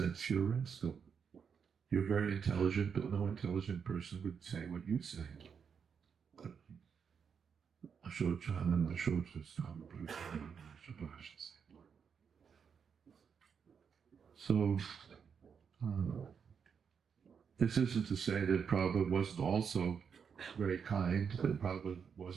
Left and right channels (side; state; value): left; quieter; 6.7 dB